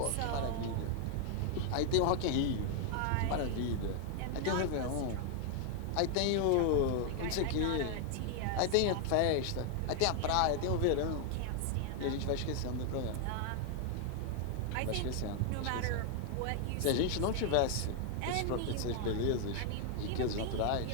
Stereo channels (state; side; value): different; both; correlation 0.00